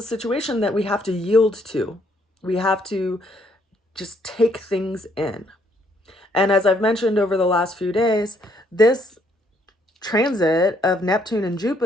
situation that we have to yield to. We have to just take things in. And as I've mentioned over the last few days, this transit of Neptune and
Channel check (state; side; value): normal; both; correlation 0.69